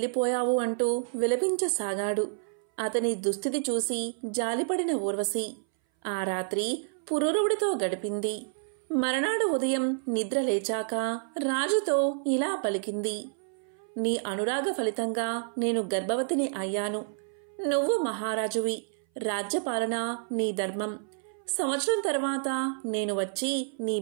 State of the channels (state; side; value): silent; left; 59 dB below the other